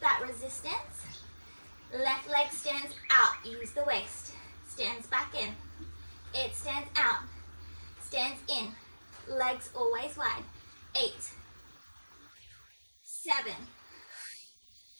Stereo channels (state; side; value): inverted; both; correlation -1.00